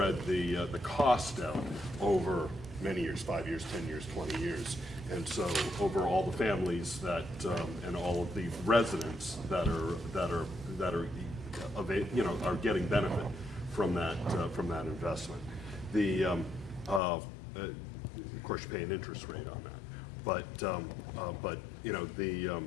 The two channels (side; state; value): right; drops out; at 17.0 s